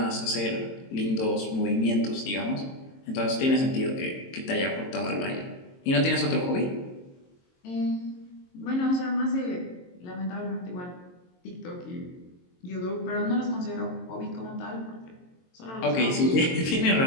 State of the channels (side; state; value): right; late; 22 ms